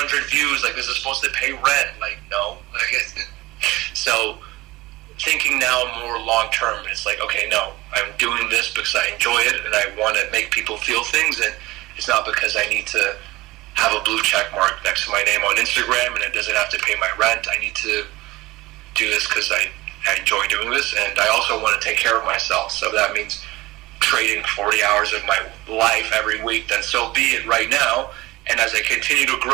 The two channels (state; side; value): quieter; left; 19.6 dB